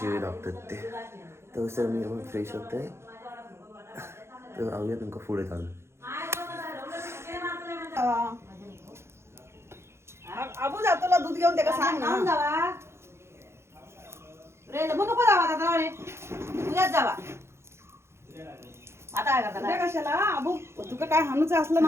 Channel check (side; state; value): left; late; 0.13 ms